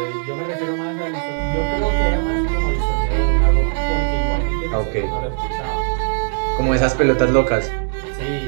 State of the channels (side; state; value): left; silent; 66 dB below the other